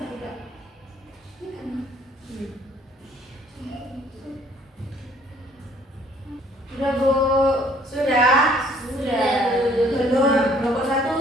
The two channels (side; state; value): both; normal; correlation 0.60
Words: Sudah Bu? Sudah? Sudah. Belum? Kelompok